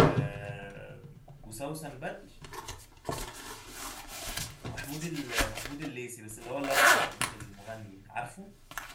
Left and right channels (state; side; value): identical; both; correlation 1.00